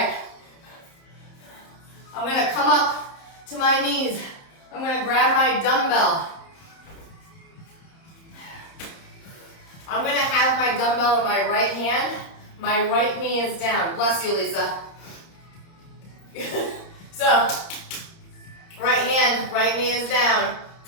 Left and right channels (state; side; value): late; right; 30 ms